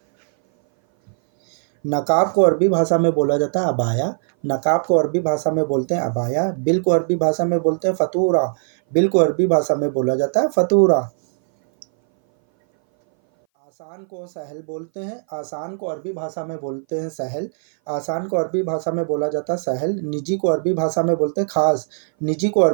नकाब को अरबी भाषा में बोला जाता है अबाया, नकाब को अरबी भाषा में बोलते हैं अबाया। बिल को अरबी भाषा में बोलते हैं फतूरा, बिल को अरबी भाषा में बोला जाता है फतूरा। आसान को सहल बोलते हैं, आसान को अरबी भाषा में बोलते हैं सहल, आसान को अरबी भाषा में बोला जाता है सहल। निजी को अरबी भाषा में बोलते हैं खास, निजी को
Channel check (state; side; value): silent; left; 60 dB below the other